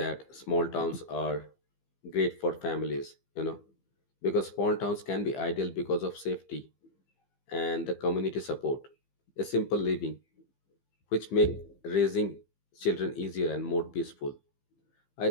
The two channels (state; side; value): late; right; 15 ms